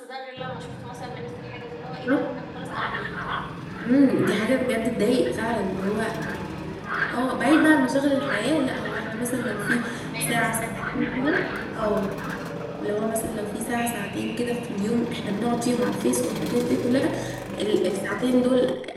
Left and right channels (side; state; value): both; identical; correlation 1.00